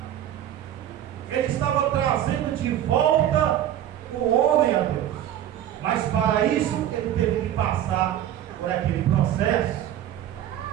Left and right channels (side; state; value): left; quieter; 11.5 dB